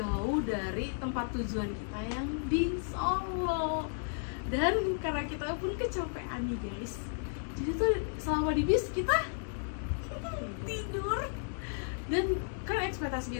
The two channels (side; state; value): right; silent; digital silence